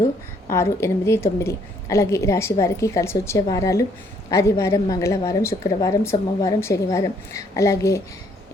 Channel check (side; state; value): both; normal; correlation 0.66